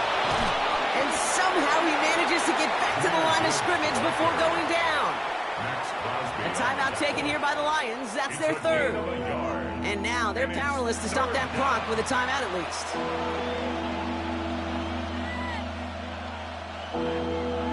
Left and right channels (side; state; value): both; identical; correlation 1.00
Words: And somehow he manages to get back to the line of scrimmage before going down. A timeout taken here by the Lions. That's their 3rd. And now they're powerless to stop that clock with a timeout at least.